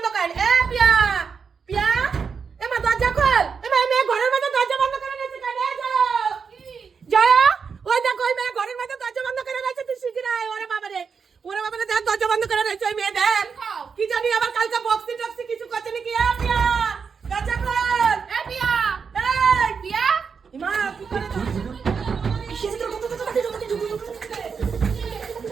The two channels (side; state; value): left; quieter; 5.9 dB